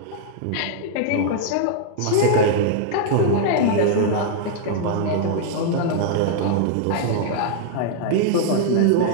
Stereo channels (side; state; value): both; different; correlation -0.01